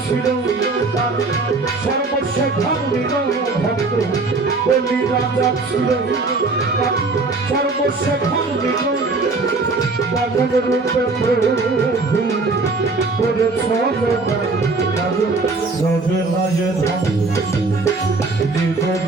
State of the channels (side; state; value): left; quieter; 3.7 dB